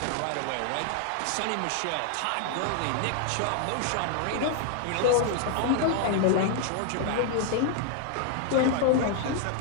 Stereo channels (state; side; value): different; both; correlation 0.00